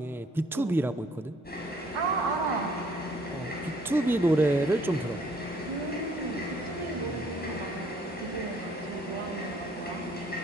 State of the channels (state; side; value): normal; both; correlation 0.60